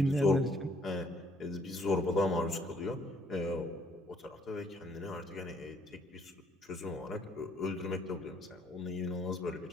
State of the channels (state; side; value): normal; both; correlation 0.65